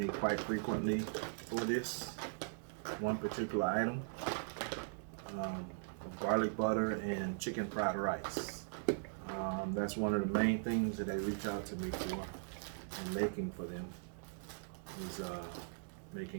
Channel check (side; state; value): left; silent; digital silence